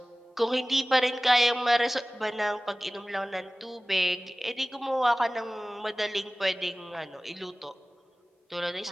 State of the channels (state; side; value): normal; both; correlation 0.98